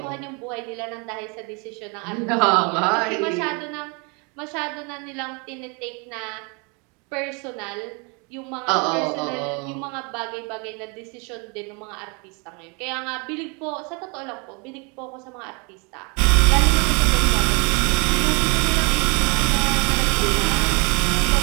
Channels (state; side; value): quieter; left; 32.3 dB